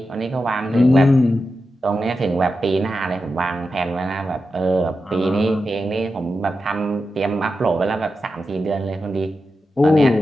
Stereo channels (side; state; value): both; normal; correlation 0.90